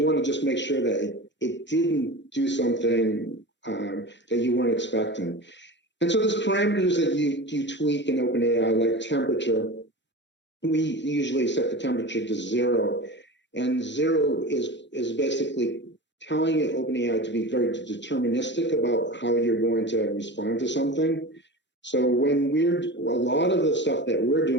want to just make sure that it didn't do something that you weren't expecting. And so there's parameters that you tweak in OpenAI, like temperature. We usually set the temperature to 0, and 0 is basically telling OpenAI to be very deterministic about how you're going to respond to something. So a lot of the stuff that we're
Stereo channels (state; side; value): normal; both; correlation 0.30